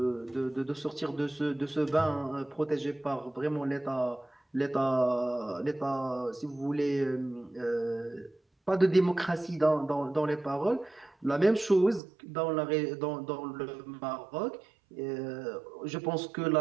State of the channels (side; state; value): left; drops out; at 12.0 s